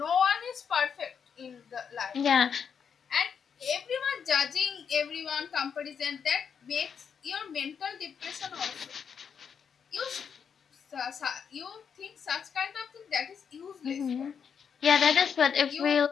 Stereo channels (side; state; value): right; quieter; 7.0 dB